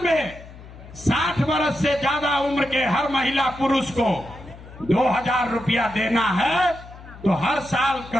में 60 वर्ष से ज्यादा उम्र के हर महिला पुरुष को 2,000 रुपया देना है तो हर साल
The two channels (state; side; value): noise; left; hum, 18 dB below the sound